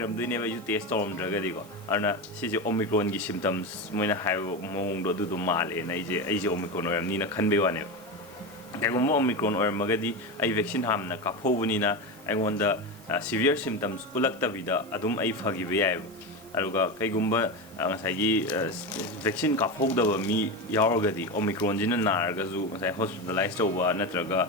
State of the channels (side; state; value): right; noise; hiss, 24 dB below the sound